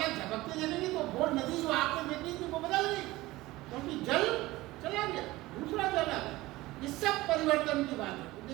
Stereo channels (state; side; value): quieter; left; 18.8 dB